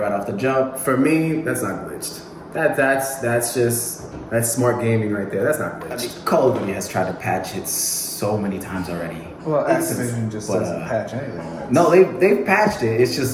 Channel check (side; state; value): both; identical; correlation 1.00